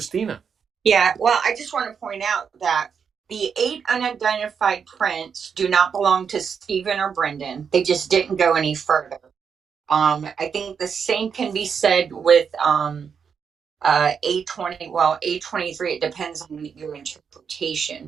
Yeah, well, I just want to point out that the 8 unidentified prints do not belong to Stephen or Brendan. They just didn't go any further. I think the same can be said with A20. Well, A23, it depends on your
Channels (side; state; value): left; quieter; 6.6 dB